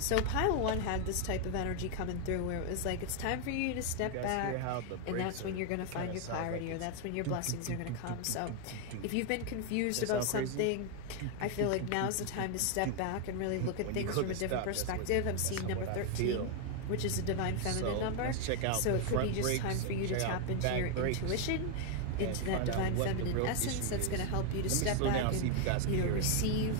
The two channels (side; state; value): both; different; correlation 0.01